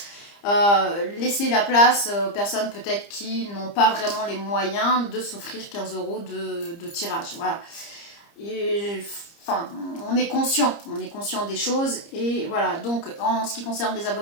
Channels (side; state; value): right; late; 30 ms